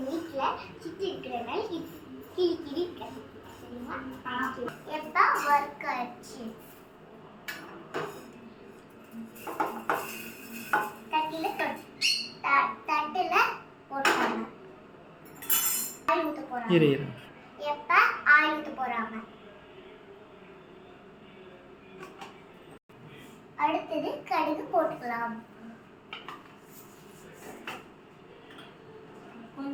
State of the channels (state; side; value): identical; both; correlation 1.00